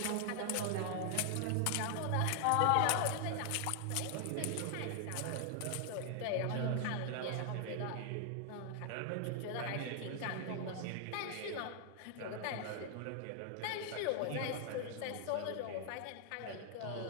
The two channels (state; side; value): different; both; correlation 0.00